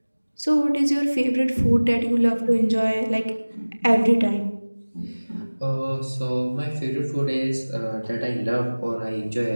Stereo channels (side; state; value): both; inverted; correlation -1.00